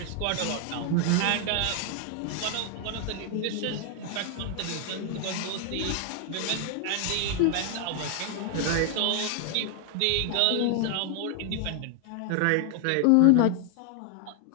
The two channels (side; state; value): both; different; correlation 0.00